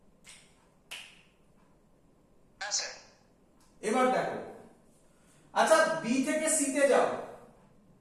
হ্যাঁ স্যার। এবার দেখো, আচ্ছা বি থেকে সি তে যাও,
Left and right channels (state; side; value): identical; both; correlation 1.00